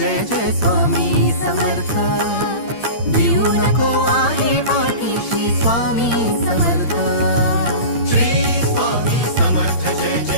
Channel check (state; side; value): late; right; 8.7 ms